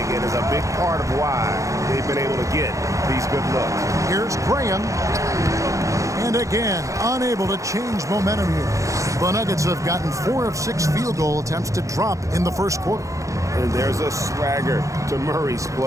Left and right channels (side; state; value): left; late; 0.15 ms